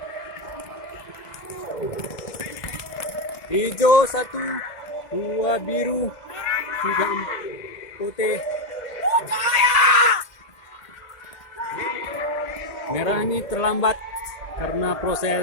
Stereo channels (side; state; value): right; late; 1.8 ms